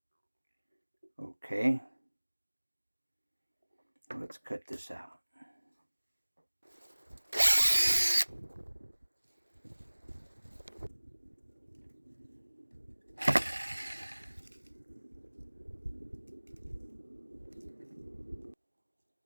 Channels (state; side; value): inverted; both; correlation -1.00